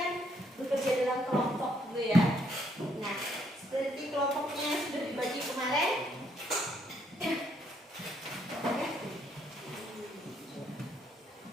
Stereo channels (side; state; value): both; normal; correlation 0.71